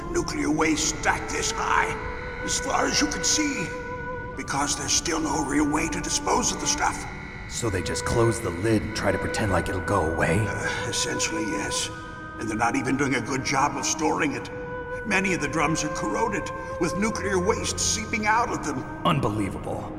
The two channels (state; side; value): identical; both; correlation 1.00